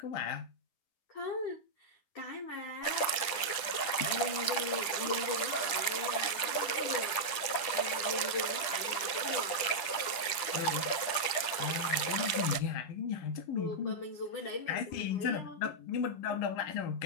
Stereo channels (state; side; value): late; right; 10 ms